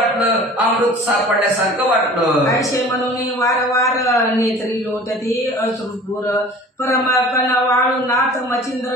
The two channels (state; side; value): normal; both; correlation 0.44